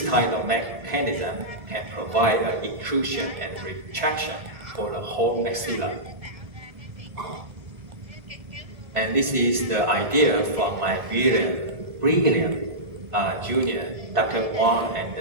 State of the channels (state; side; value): late; left; 1.7 ms